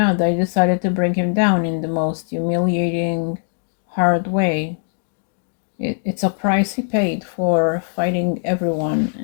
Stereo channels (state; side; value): silent; right; digital silence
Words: they decided to bring him down in the most humiliating, hard way. It's a price he paid for fighting everyone,